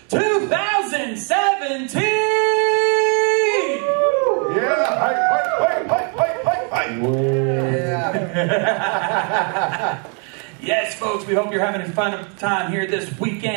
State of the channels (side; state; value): left; quieter; 39.2 dB